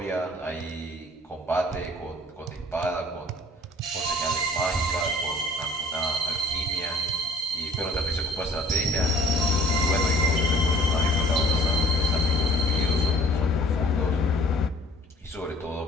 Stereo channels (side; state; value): both; normal; correlation 0.54